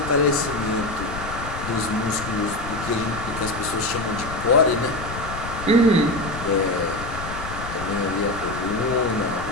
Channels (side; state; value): left; noise; rumble, 9 dB below the sound